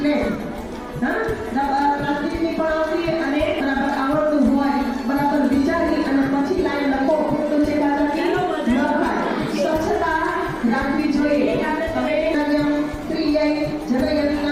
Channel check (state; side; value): identical; both; correlation 1.00